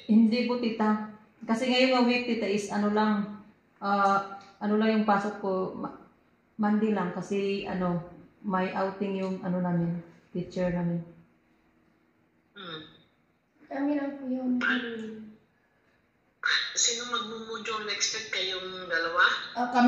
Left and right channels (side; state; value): both; identical; correlation 1.00